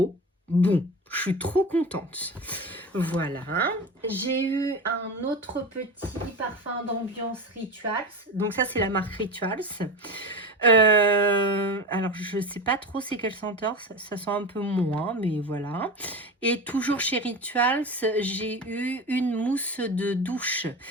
bon. Je suis trop contente. Voilà. J'ai eu un autre petit parfum d'ambiance Rituals. Donc ça, c'est la marque Rituals. Alors, je sais pas trop c'est quelle senteur. Ça sent un peu moins, mais voilà. Et toujours chez Rituals, j'ai eu une mousse de douche.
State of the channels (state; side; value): normal; both; correlation 0.27